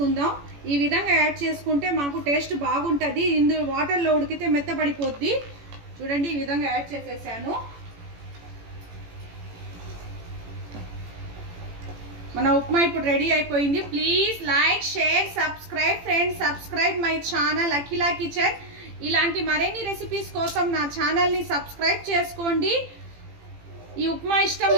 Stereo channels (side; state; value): left; late; 18 ms